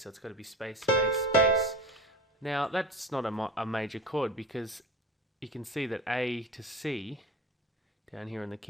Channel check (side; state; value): both; normal; correlation 0.31